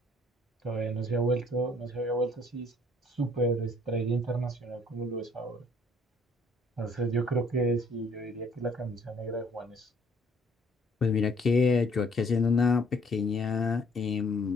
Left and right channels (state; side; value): normal; both; correlation 0.61